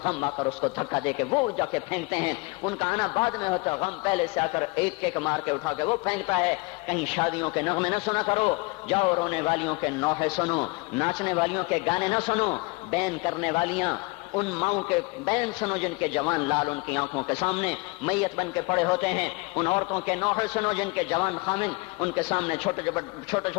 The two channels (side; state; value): right; quieter; 27.8 dB